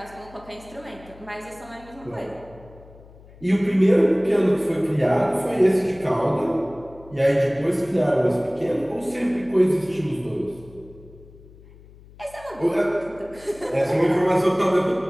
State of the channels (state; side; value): noise; left; hum, 22 dB below the sound